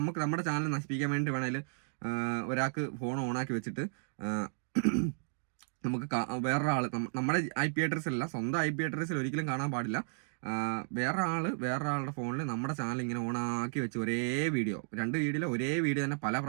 ചാനൽ നശിപ്പിക്കാൻ വേണ്ടി വേണമെങ്കിൽ ഒരാൾക്ക് ഫോൺ ഓണാക്കി വെച്ചിട്ട് നമുക്ക് വേറൊരാൾ നമ്മുടെ IP അഡ്രസ്സിലല്ല, സ്വന്തം IP അഡ്രസ്സിൽ ഒരിക്കലും കാണാൻ പാടില്ല. വേറൊരാളുടെ ഫോണിൽ നമ്മുടെ ചാനൽ ഇങ്ങനെ ഓണാക്കി വെച്ച് ഒരേ വീഡിയോ, 2 വീഡിയോയിൽ ഒരേ വീഡിയോ തന്നെ പല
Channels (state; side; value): silent; left; digital silence